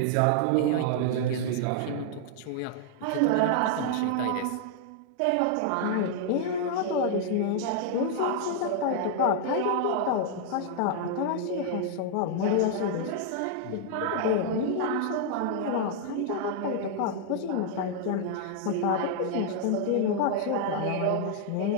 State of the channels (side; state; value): both; different; correlation -0.01